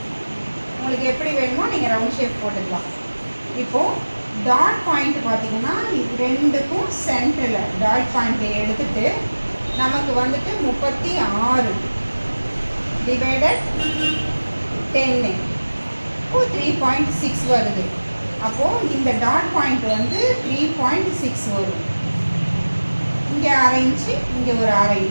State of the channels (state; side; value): inverted; both; correlation -1.00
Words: உங்களுக்கு எப்படி வேணுமோ நீங்கள் ரவுண்ட் ஷேப் போட்டுக்கலாம். இப்போது டாட் பாயிண்ட் பார்த்தீங்கன்னா இது ரெண்டுக்கும் சென்டரில் டாட் பாயிண்ட்டை எடுத்துட்டு நமக்கு வந்துட்டு 36 டிவைடட் 10 இப்போ 3.6 வருது. அப்போது இந்த டாட் பாயிண்ட் வந்து 3.6 வரும். இங்கே 1/2 இன்ச்சு, இங்கே ஒரு 1/2